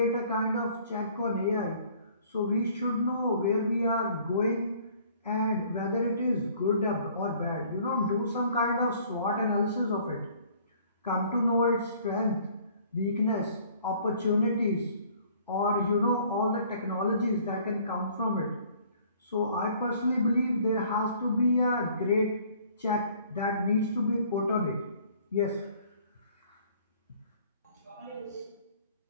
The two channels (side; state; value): both; inverted; correlation -0.56